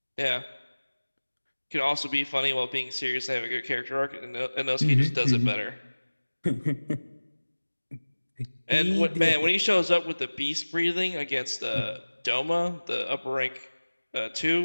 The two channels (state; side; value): inverted; both; correlation -1.00